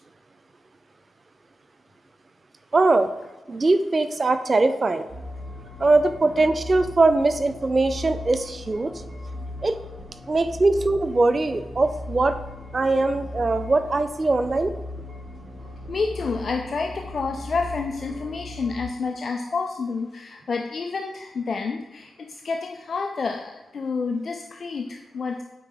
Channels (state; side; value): normal; both; correlation 0.92